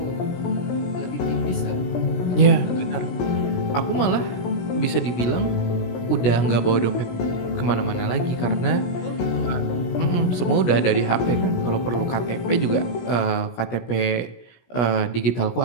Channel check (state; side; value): late; right; 16 ms